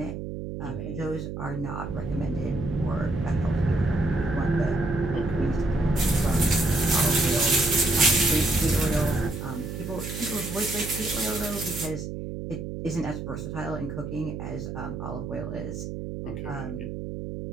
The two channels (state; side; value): noise; right; hum, 6 dB below the sound